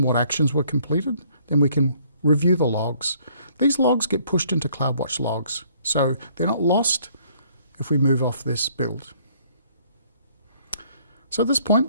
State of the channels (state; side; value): inverted; both; correlation -0.63